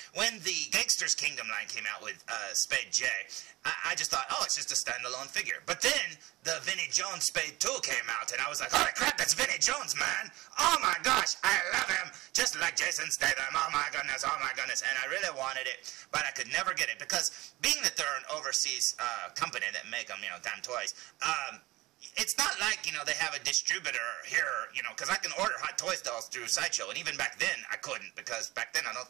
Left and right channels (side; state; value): left; quieter; 19.8 dB